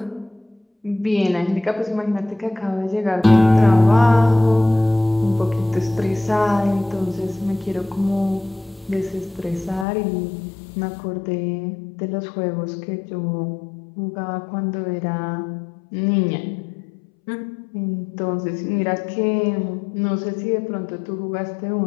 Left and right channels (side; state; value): right; drops out; at 9.9 s